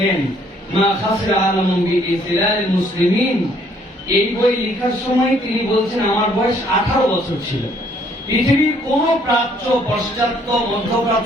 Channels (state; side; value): normal; both; correlation 0.64